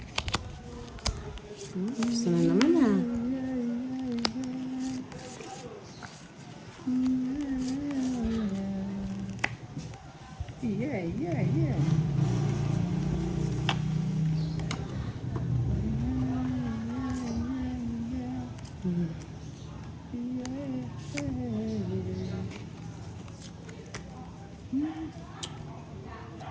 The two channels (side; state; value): both; identical; correlation 1.00